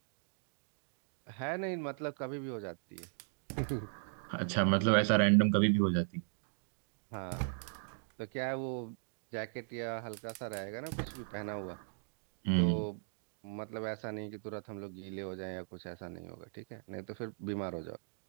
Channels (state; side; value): silent; left; digital silence